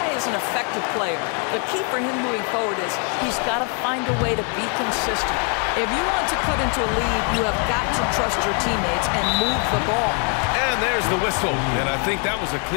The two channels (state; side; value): quieter; right; 39.1 dB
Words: is an effective player. The key for him moving forward is he's got to find a way to be consistent. If you want to cut into a lead, you have got to trust your teammates and move the ball. And there's the whistle. And I think that was a